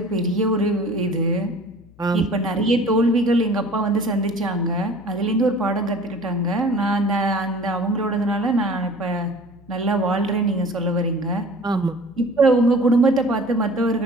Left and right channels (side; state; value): left; noise; hum, 26 dB below the sound